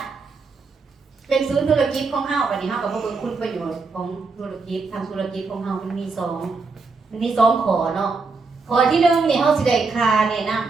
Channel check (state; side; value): quieter; left; 4.3 dB